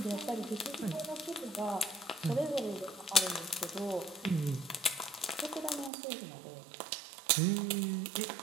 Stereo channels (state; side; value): drops out; left; at 5.9 s